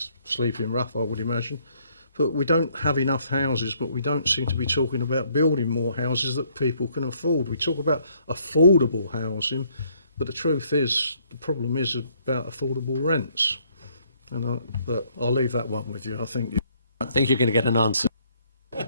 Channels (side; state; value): both; inverted; correlation -0.67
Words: sleeping rough, I would imagine. But we don't have enough houses, but we don't seem to be talking about building more houses that people can afford. We talk about affordable housing, but the truth is, the problem is about affordable rents. But I'll leave that one with you. I think you're going to get an answer.